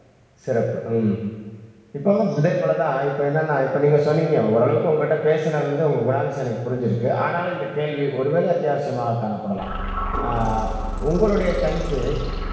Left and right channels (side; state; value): both; identical; correlation 1.00